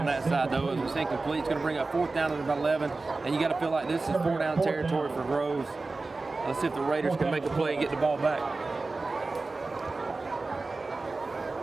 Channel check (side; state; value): left; quieter; 3.6 dB